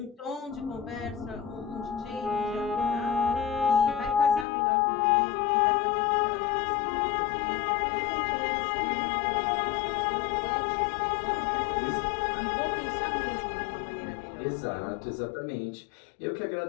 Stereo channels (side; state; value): right; drops out; at 4.5 s